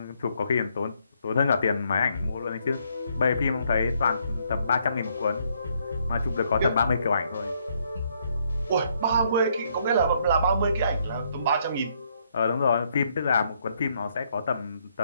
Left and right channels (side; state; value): both; inverted; correlation -0.71